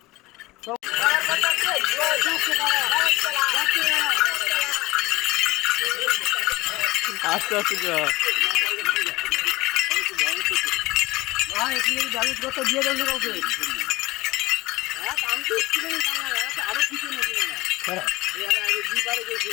আস্তে আস্তে যা। হ্যাঁ এখানে ব্যালেন্স করতে দিয়ে দেন কাউকে। হ্যাঁ আমি তো স্কুলে আরো কিছু নাকি না স্যার এই আগে দুই বারে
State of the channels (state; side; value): quieter; right; 20.0 dB